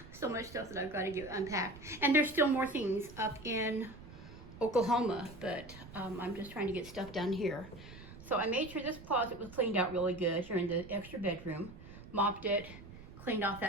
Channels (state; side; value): noise; right; rumble, 16 dB below the sound